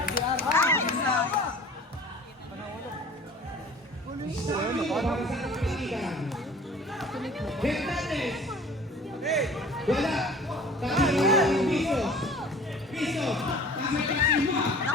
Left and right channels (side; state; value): both; normal; correlation 0.45